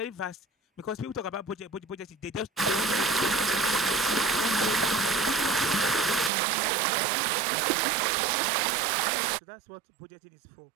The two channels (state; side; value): drops out; left; at 6.3 s